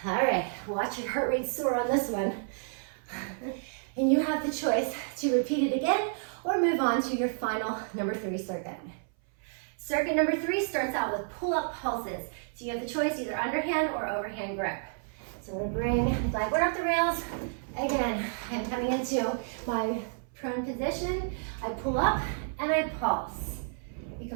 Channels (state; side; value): silent; left; 57 dB below the other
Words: All right, watch your heart rate soar on this one. And you have the choice to repeat it again or move on to your final number 3 circuit. Circuit number 3 starts out with pull-up pulses. So you have the choice, either underhand or overhand grip. So I'm gonna bring the glide board up the rails. Again, I'm coming into my prone position. I pull up and I pulse. You